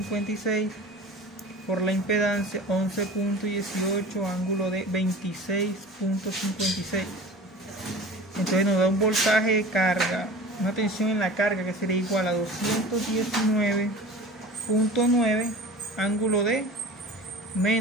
por la impedancia 11.18, ángulo de 26.56. Entonces nos da un voltaje de carga, una tensión en la carga que sería igual a 219.9, ángulo de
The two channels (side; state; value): both; normal; correlation 0.39